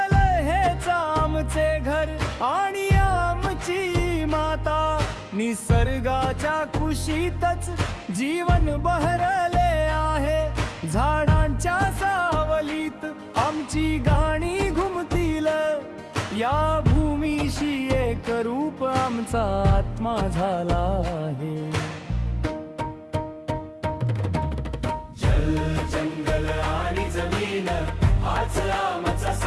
हेच आमचे घर आणि आमची माता. निसर्गाच्या कुशीतच जीवन बहरले आहे. झाडांच्या सावलीत आमची गाणी घुमतील. या भूमीशी एक रूप आमचा आत्मा झाला आहे. जल जंगल आणि जमीन हाच आमचा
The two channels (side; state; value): both; identical; correlation 1.00